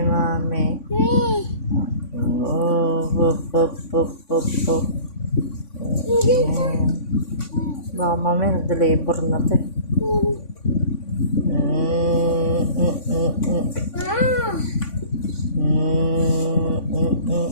mami. Baka mamaya nag-deliver na to. No.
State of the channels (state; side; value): late; right; 3.5 ms